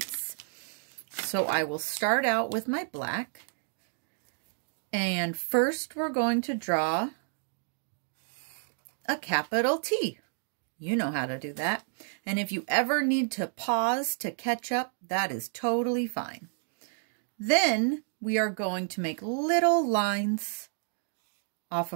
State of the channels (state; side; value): silent; left; 58 dB below the other